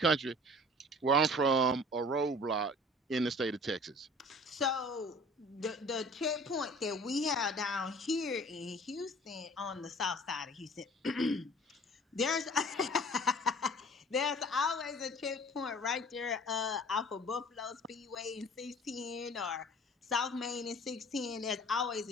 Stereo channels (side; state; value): both; normal; correlation 0.47